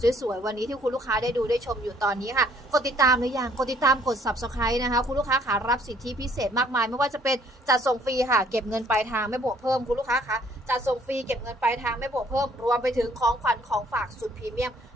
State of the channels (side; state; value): both; normal; correlation 0.62